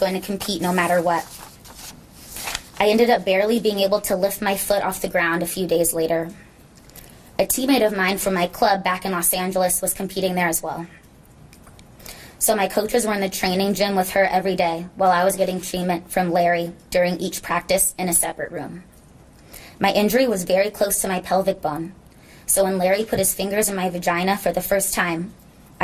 to compete no matter what. I ended up barely being able to lift my foot off the ground a few days later. A teammate of mine from my club back in Los Angeles was competing there as well. So my coaches were in the training gym with her every day while I was getting treatment from Larry during each practice in a separate room. My injury was very close to my pelvic bone, so when Larry put his fingers in my vagina for the first time,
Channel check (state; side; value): identical; both; correlation 1.00